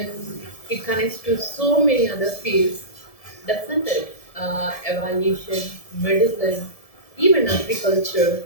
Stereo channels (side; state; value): right; late; 1.7 ms